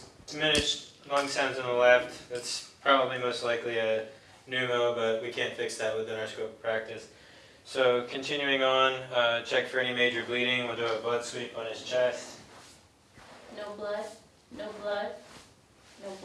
diminished lung sounds on the left, that's probably most likely a pneumo, but we can't fix that within our scope of practice. So continuing on, check for any major bleeding. We'll do a blood sweep on his chest. No blood. No blood. No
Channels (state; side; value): identical; both; correlation 1.00